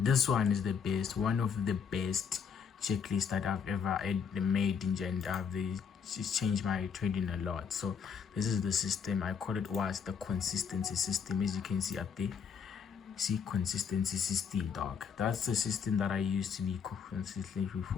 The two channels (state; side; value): quieter; right; 6.8 dB